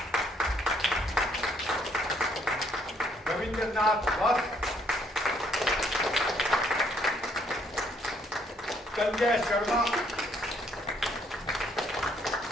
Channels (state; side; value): normal; both; correlation 0.67